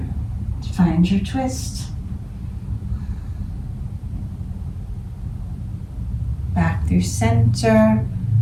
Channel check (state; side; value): identical; both; correlation 1.00